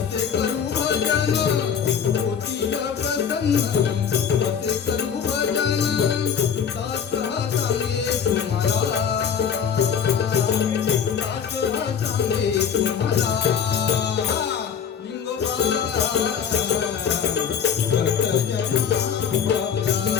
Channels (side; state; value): right; quieter; 7.6 dB